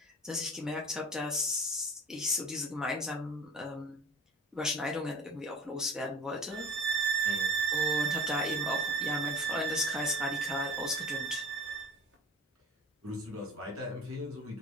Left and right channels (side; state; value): both; normal; correlation 0.42